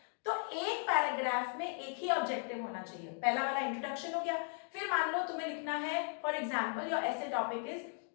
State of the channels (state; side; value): silent; right; 53 dB below the other